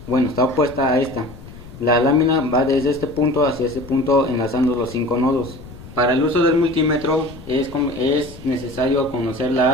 opuesta a esta. La lámina va desde este punto hacia este punto, enlazando los 5 nodos. Para el uso del multímetro es necesario conocer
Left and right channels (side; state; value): left; noise; rumble, 17 dB below the sound